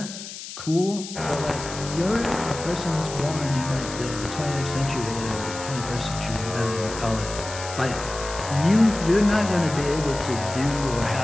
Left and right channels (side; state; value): left; noise; hiss, 11 dB below the sound